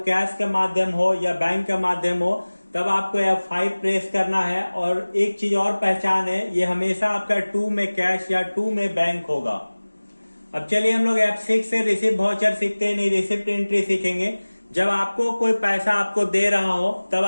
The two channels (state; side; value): inverted; both; correlation -1.00